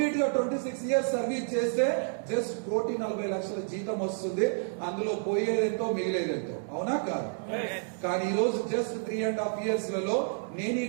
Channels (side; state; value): left; silent; digital silence